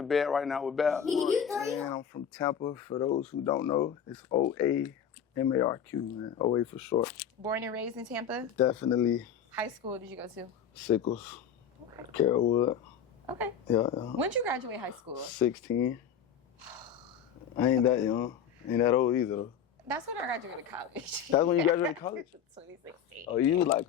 bed right now with Bab. Man, I'm from Tampa. For those who don't know, it's OA MARQ, man. OA for short. Born and raised in Tampa? Definitely. High school did you go to? Sickles. Okay. Carrollwood. Okay. Yeah. When did you graduate high school? 16. I ain't that young. Ain't that old either, though. That's when I graduated college. That's when you graduated college? 2016. Oh, you like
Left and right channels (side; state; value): right; quieter; 7.8 dB